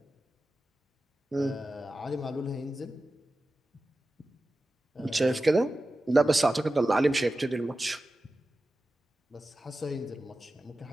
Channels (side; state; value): both; normal; correlation 0.94